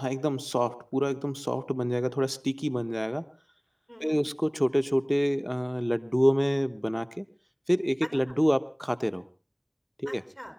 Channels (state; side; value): identical; both; correlation 1.00